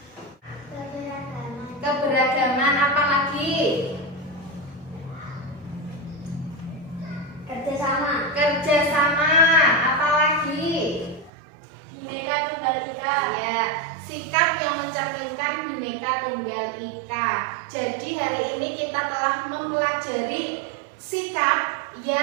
Keberagaman. Apa lagi? Kerjasama. Kerjasama. Apa lagi? Bhinneka Tunggal Ika. Ya, sikap yang mencerminkan Bhinneka Tunggal Ika. Jadi hari ini kita telah mempelajari sikap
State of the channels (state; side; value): drops out; left; at 11.3 s